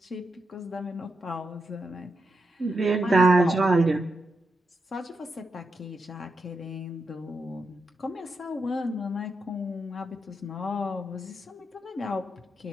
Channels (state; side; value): normal; both; correlation 0.85